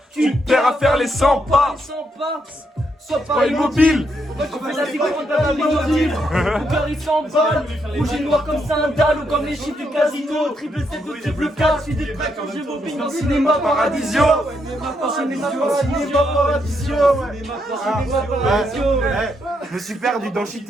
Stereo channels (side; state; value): both; normal; correlation 0.78